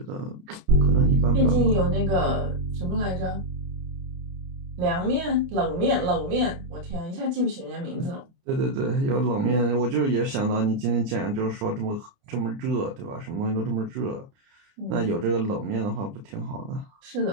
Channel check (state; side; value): late; left; 29 ms